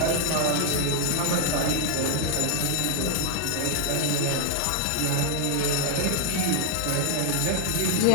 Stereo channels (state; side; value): different; both; correlation 0.00